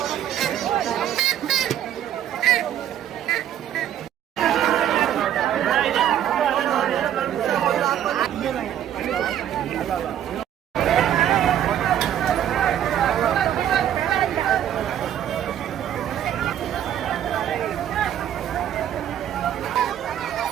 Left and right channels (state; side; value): quieter; left; 10.7 dB